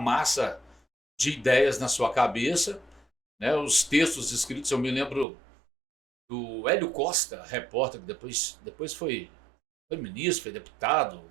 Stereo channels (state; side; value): drops out; left; at 5.2 s